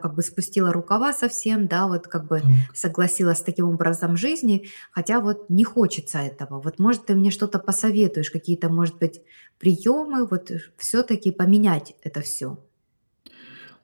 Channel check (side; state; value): both; inverted; correlation -1.00